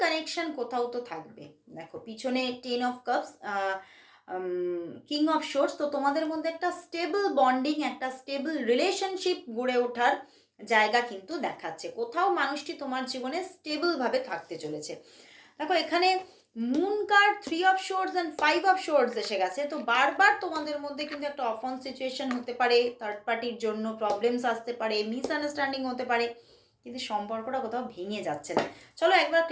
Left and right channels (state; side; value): identical; both; correlation 1.00